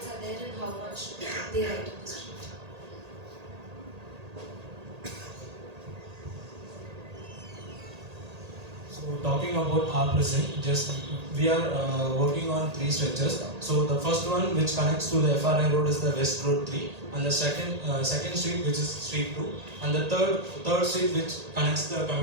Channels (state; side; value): late; left; 1.8 ms